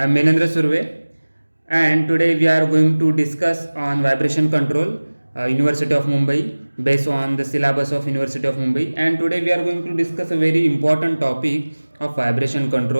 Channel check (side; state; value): both; inverted; correlation -1.00